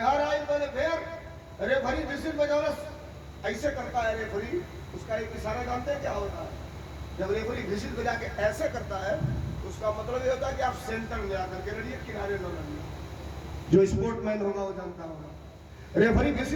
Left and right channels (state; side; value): identical; both; correlation 1.00